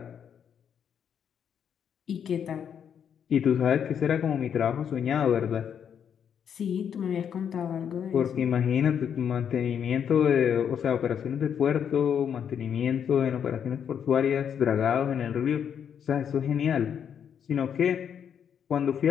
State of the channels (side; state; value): right; quieter; 8.1 dB